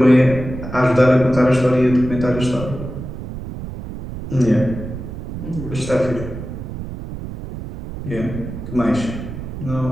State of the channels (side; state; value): right; noise; rumble, 9 dB below the sound